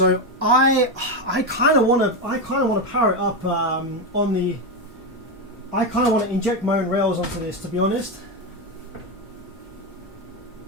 I kind of want to power it up on the. I kind of want to inject my own rails onto this, to be honest.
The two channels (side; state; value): both; normal; correlation 0.10